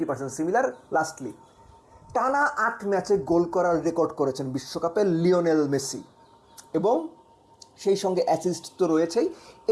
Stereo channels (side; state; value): both; identical; correlation 1.00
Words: similar. Lastly টানা 8 ম্যাচে গোল করার রেকর্ড করেছেন বিশ্বকাপে লিওনেল মেসি, এবং সেই সঙ্গে অ্যাসিস্ট তো রয়েছেই।